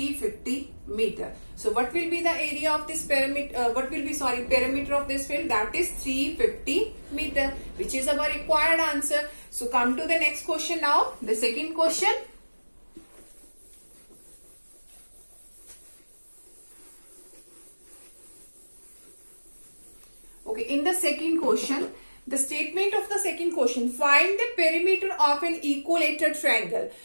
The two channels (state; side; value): inverted; both; correlation -1.00